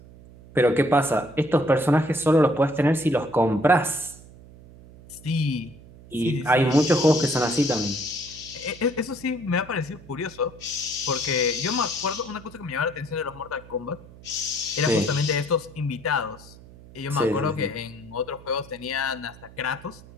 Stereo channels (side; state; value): right; noise; hum, 20 dB below the sound